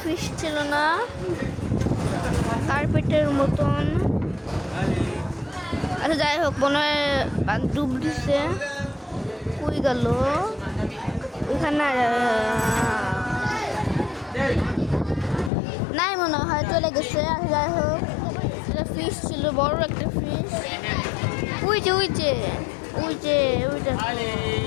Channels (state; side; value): drops out; right; at 15.5 s